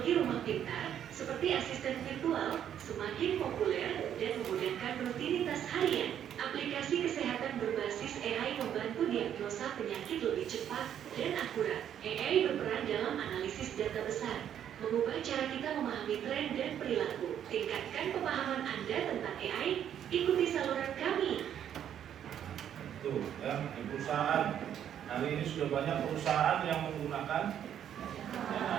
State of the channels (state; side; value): quieter; left; 9.8 dB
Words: rumah pintar, seperti asisten virtual, semakin populer dan memudahkan rutinitas harian. Aplikasi kesehatan berbasis AI membantu diagnosis mendiagnosa penyakit lebih cepat dan akurat. AI berperan dalam analisis data besar, mengubah cara kita memahami tren dan perilaku. Tingkatkan pemahaman Anda tentang AI, ikuti saluran kami. Tuh, ya, di perusahaan. Hari ini sudah banyak perusahaan yang menggunakan